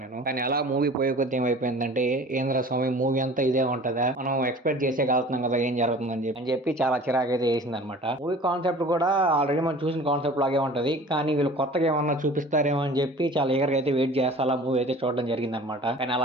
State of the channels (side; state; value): both; normal; correlation 0.44